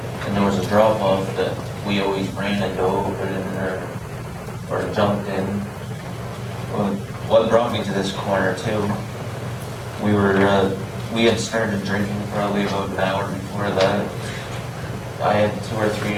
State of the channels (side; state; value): both; identical; correlation 1.00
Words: and there was a drop off that we always ran and dove in or jumped in. Well, what brought me to this corner too, we had started drinking probably about an hour before that. I had 2 or 3